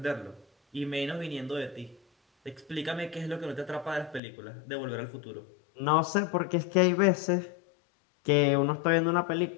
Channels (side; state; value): right; drops out; at 4.2 s